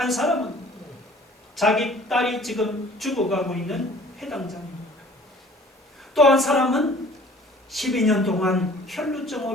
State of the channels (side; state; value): both; normal; correlation 0.51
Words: 사람은 자기 딸이 지금 죽어가고 있는 회당장입니다. 또 한 사람은 12년 동안